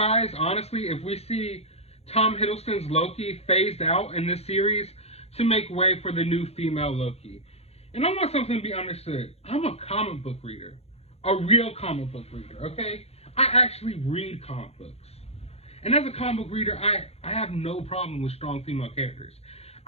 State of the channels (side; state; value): right; late; 0.30 ms